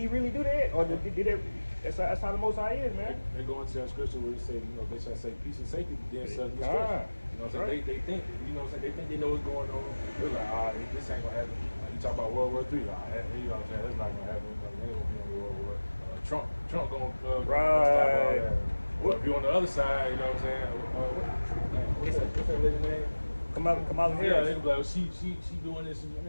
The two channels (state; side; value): inverted; both; correlation -1.00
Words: really do that, or did that? That's how the Most High is, man. They go into that scripture where it say, you know, they shall say peace and safety, then sudden destruction. You know what I'm saying? They think, you know what I'm saying? They think they know what's going on. They're like, this ain't gonna happen. Like, you talk about World War III, you know what I'm saying? That's not gonna happen. They ain't gonna be on World War. Trump gonna stop all that. Well, if you're on the other side, you know what I'm saying? What's that lady's name? Kamala Harris. Yeah, they be like, she doing this.